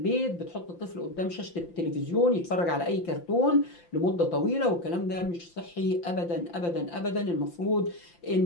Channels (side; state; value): right; late; 5.8 ms